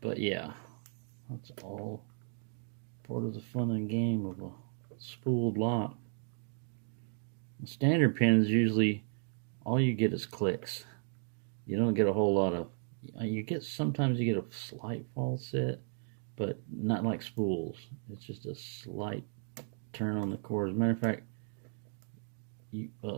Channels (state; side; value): silent; left; 55 dB below the other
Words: But yeah, that's all part of the fun and game of a spooled lock. The standard pins, usually all you get is clicks. You don't get a whole lot of, sometimes you get a slight false set, but not like spools. It's just a slight turn on the cord. As a matter of fact, you